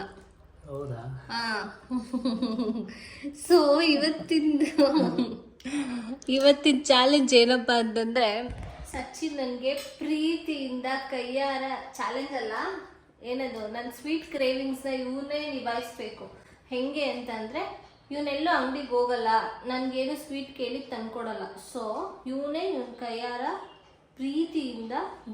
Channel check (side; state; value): both; identical; correlation 1.00